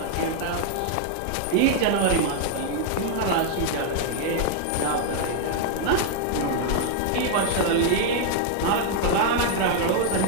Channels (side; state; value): both; different; correlation 0.00